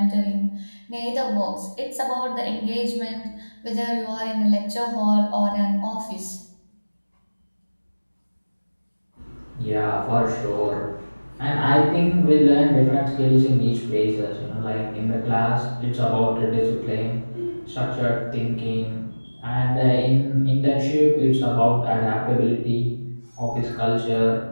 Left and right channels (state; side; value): inverted; both; correlation -1.00